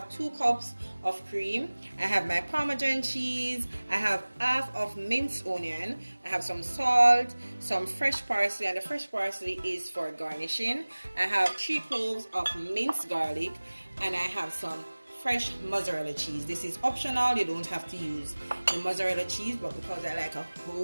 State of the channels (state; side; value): inverted; both; correlation -1.00